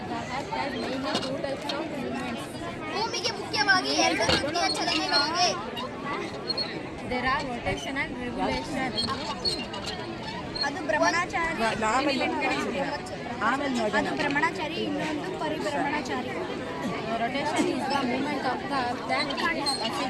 ಭೂಮಿಗೆ ಮುಖ್ಯವಾಗಿ ಎರಡು ರೀತಿಯ ಚಲನೆಗಳಿವೆ. There are rotation and revolution. ಅದು ಭ್ರಮಣಾಚಾರಿ, ಅದು ಭ್ರಮಣಾಚಾರಿ, ಇನ್ನೊಂದು ಪರಿಭ್ರಮಣಾಚಾರಿ. Rotation is the movement of the earth that is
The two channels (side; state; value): both; identical; correlation 1.00